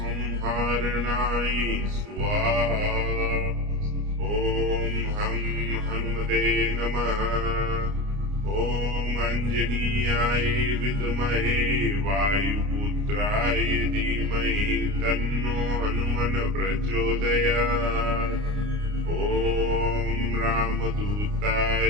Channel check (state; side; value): late; left; 29 ms